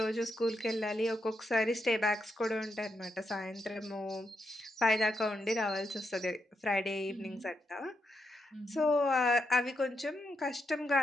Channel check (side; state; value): both; normal; correlation 0.83